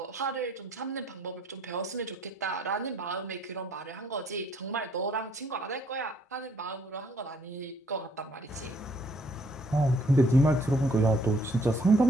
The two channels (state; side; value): normal; both; correlation 0.65